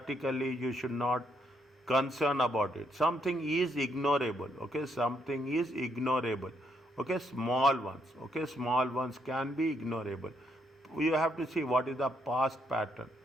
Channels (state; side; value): normal; both; correlation 0.75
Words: you should not concern about it. Something is ignorable. Okay, something is ignorable. Okay, small ones. Okay, small ones can be ignorable. You have to see what is the past pattern.